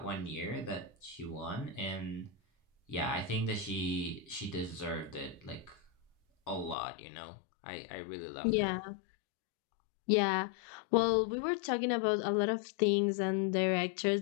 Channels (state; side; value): drops out; right; at 6.8 s